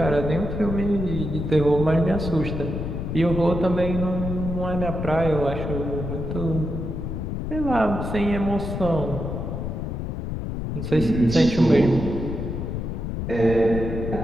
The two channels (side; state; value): left; noise; rumble, 4 dB below the sound